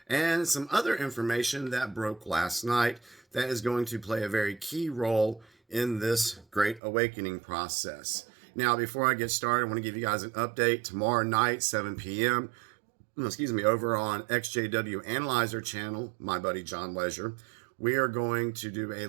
and some other information that broke last night that is going to play a very key role in this great awakening process. Now, before I get started, I want to give you guys an update. Tomorrow night, 7 p.m., over on XJW Analyzer channel, my buddy John Leisure, we are going to do a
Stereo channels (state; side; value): drops out; left; at 6.8 s